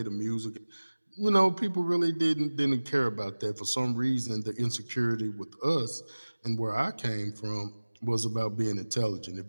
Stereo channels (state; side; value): inverted; both; correlation -1.00